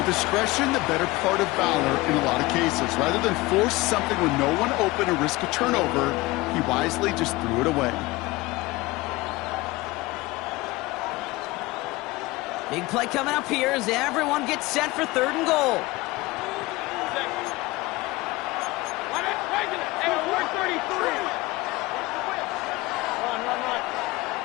discretion, the better part of valor in a lot of cases. Rather than force something with no one open and risk a turnover, he wisely just threw it away. Big play coming up here as everyone gets set for 3rd and goal. Hey, alert 33. Run.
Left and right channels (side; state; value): right; quieter; 20.9 dB